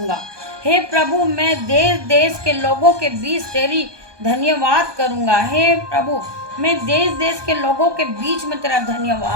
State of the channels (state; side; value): late; left; 1.2 ms